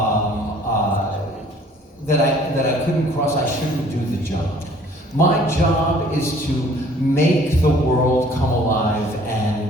that I couldn't cross, I shouldn't do the job. My job is to make the world come alive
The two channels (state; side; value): normal; both; correlation 0.55